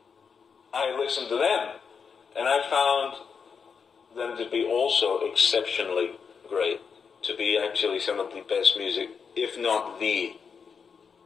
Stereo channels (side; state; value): right; quieter; 6.0 dB